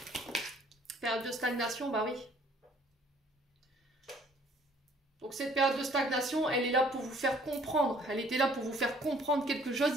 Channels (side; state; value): both; normal; correlation 0.58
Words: Période de stagnation, bah oui. Donc, cette période de stagnation, elle est là pour vous faire comprendre. Elle était là pour vous faire comprendre quelque chose